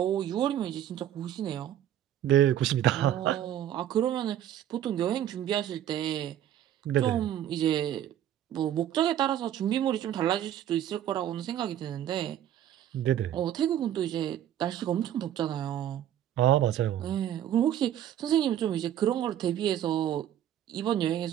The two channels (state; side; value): quieter; left; 11.1 dB